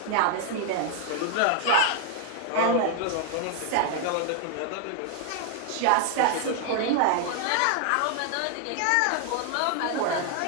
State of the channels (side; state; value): both; different; correlation 0.00